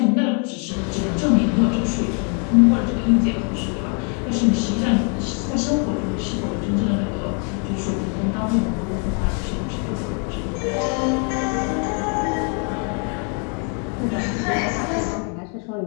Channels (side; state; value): right; quieter; 39.5 dB